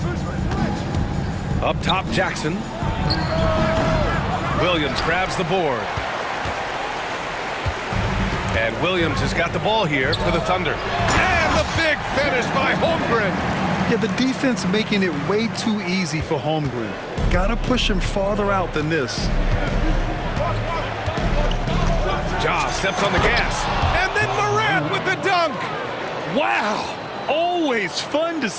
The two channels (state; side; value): identical; both; correlation 1.00